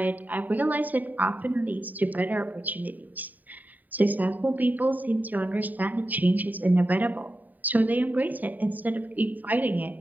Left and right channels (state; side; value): late; left; 0.085 ms